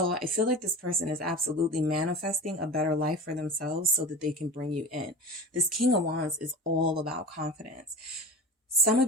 I feel like this person is absolutely manifesting a better life for themselves so that they can bring you in. This King of Wands is all about confidence. Some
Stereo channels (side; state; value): both; normal; correlation 0.32